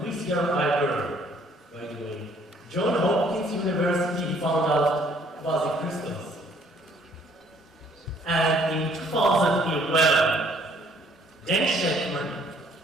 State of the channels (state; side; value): normal; both; correlation 0.62